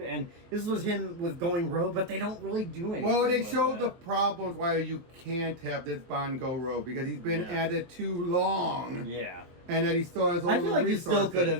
this was him with going rogue, but they don't really do anything. Well, they showed the problems why you can't have this Bond go rogue, because he's been at it too long. Yeah. And that he still has all the resources. I feel like you still could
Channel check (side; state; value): left; late; 23 ms